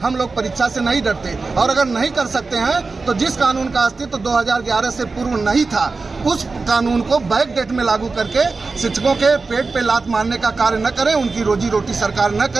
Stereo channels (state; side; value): quieter; left; 4.0 dB